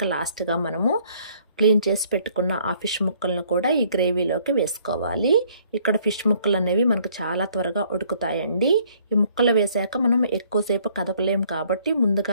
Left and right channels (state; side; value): inverted; both; correlation -0.62